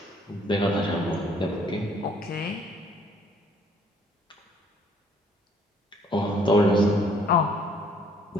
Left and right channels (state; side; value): normal; both; correlation 0.62